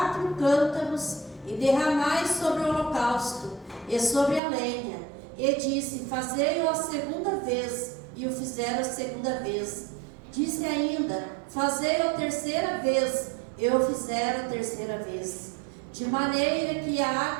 cântaros e derramai sobre o holocausto e sobre a lenha. E disse: Fazei-o a segunda vez. E o fizeram a segunda vez. Disse ainda: Fazei-o a terceira vez. E o fizeram a terceira vez. De maneira que a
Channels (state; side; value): drops out; left; at 4.4 s